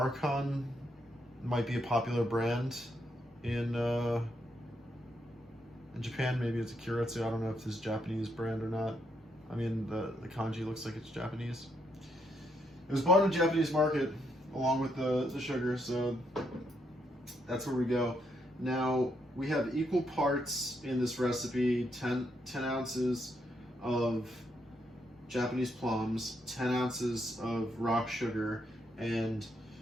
might be a popular brand in Japan. Maybe it's a Kyoritsu. I don't know if this is a Japanese brand or not. The kanji looks like it's Japanese. It was bought in the Japanese market along with the sugar, so that's where we go. Now, we have equal parts in this recipe, 10 ounces of Japanese plums, 10 ounces of rock sugar, and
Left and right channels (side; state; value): both; normal; correlation 0.77